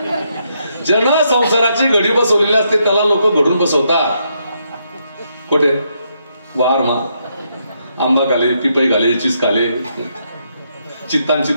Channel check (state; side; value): inverted; both; correlation -0.77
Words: जन संसाराची घडी बसवलेली असते त्याला लोक घडून बसवतात. कुठे? वार मा आंबा घाले, पिपई घाले, चिस घाले, चित्तान